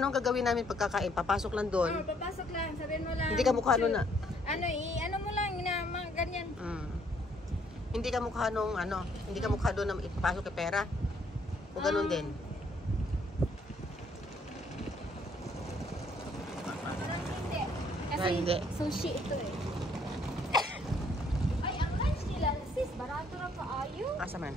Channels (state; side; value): normal; both; correlation 0.66